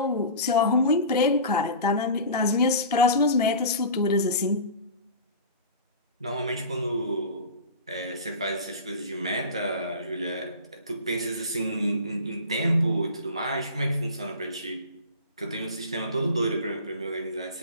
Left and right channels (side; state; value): both; inverted; correlation -0.34